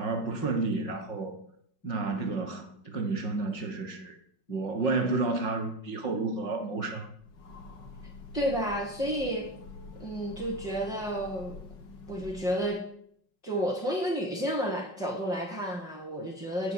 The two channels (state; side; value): late; right; 5.4 ms